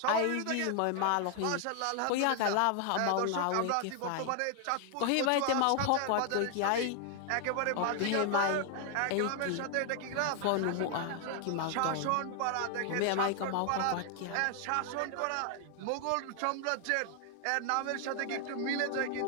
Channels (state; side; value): different; both; correlation 0.00